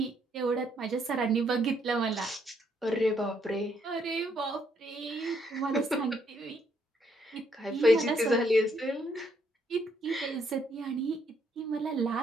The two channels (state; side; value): normal; both; correlation 0.72